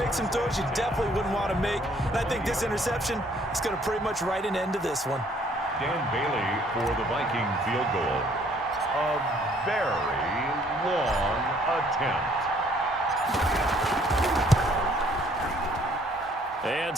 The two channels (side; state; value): both; normal; correlation 0.62